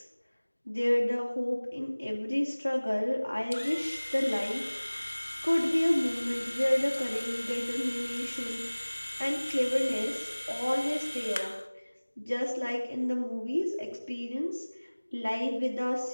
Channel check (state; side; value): inverted; both; correlation -1.00